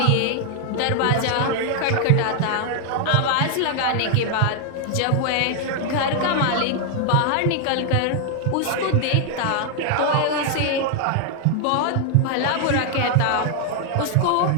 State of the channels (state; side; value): different; both; correlation 0.00